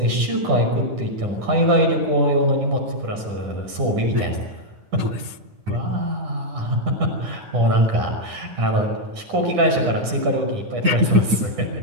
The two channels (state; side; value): late; left; 9.9 ms